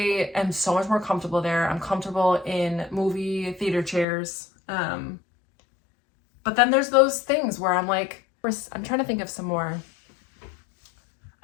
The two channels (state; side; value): drops out; right; at 4.0 s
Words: am so much more comfortable there. I'm comfortable in movie theater chairs. But then there's those things where I'm like, I'm trying to think of some more.